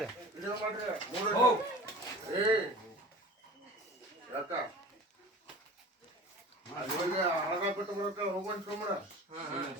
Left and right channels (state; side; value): normal; both; correlation 0.39